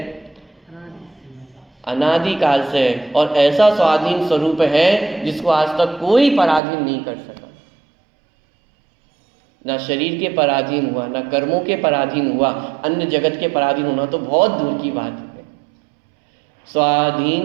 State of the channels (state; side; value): drops out; left; at 6.6 s